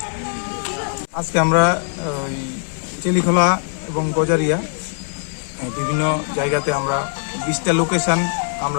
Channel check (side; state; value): right; silent; 65 dB below the other